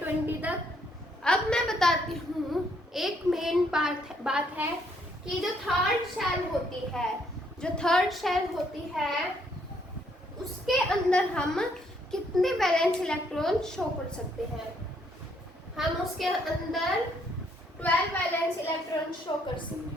20 तक। अब मैं बताती हूँ, एक मेन बात है कि जो थर्ड शेल होती है उसके अंदर हम कितने वैलेंस इलेक्ट्रॉन शो कर सकते हैं? हम उसके अंदर 12 वैलेंस इलेक्ट्रॉन शो कर सकते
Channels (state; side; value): normal; both; correlation 0.70